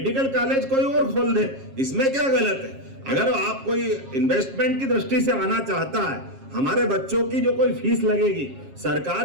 कॉलेज कोई और खोल दे। इसमें क्या गलत है? अगर आप कोई इन्वेस्टमेंट की दृष्टि से आना चाहता है, हमारे बच्चों की जो कोई फीस लगेगी,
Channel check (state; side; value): late; left; 7.4 ms